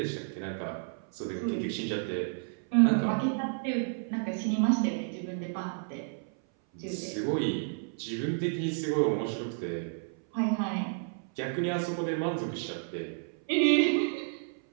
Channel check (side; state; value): left; silent; 57 dB below the other